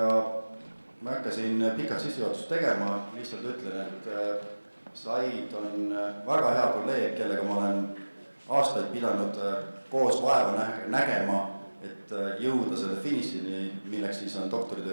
ma hakkasin pikalt sissejuhatust tegema, lihtsalt ütlen, et Saeed on väga hea kolleeg, kellega ma olen aastaid pidanud koos vaeva nägema, et jõuda selle finišini, milleks siis on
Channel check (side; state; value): both; inverted; correlation -1.00